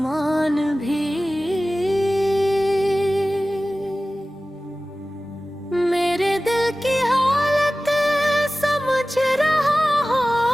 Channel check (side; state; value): both; normal; correlation 0.96